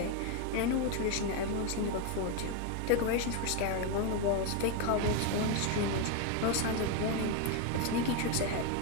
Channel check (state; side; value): different; both; correlation 0.02